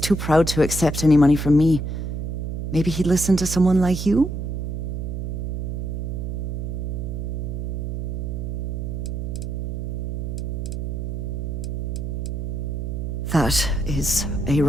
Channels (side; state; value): right; noise; hum, 3 dB below the sound